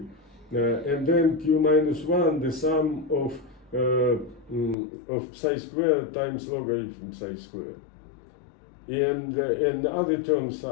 and then q minus 1, the sum of psi squared times logarithm psi squared. And other terms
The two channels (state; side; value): drops out; right; at 4.8 s